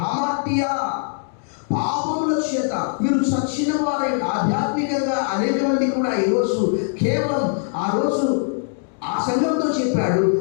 హామాటియా పాపముల చేత మీరు చచ్చిన వారై ఆధ్యాత్మికంగా అనేక మంది కూడా ఈరోజు కేవలం ఆ రోజు ఆ సంఘంతో చెప్పాడు,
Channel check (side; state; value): right; silent; 61 dB below the other